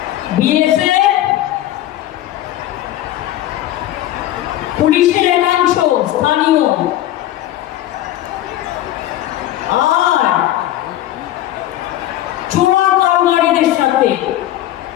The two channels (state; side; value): quieter; right; 13.9 dB